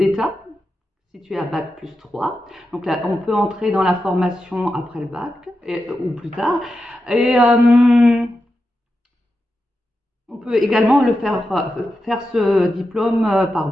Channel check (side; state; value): both; normal; correlation 0.89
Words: situé à Bac plus 3. Donc là, on peut entrer dans la formation après le bac ou plus tard. Et on peut également faire ce diplôme